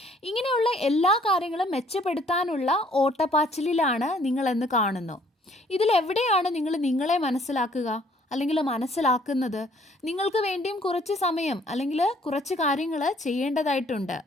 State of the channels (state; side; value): normal; both; correlation 0.61